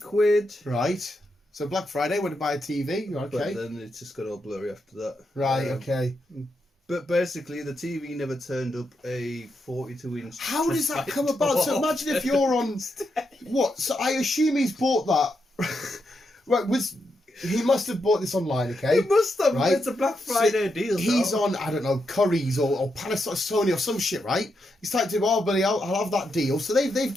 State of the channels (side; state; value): both; normal; correlation 0.83